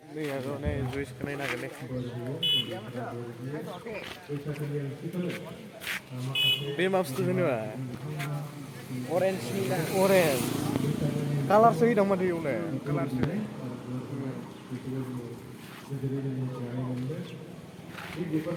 Nih aku nih juice kena naga nih. Ini maps tuh ini mah. Orange nih lah. Orange. Color sih dong mah dia nih. Kelar sih.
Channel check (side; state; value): both; identical; correlation 1.00